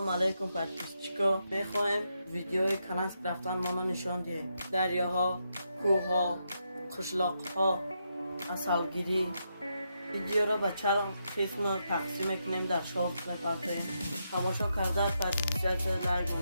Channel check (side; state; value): both; inverted; correlation -0.82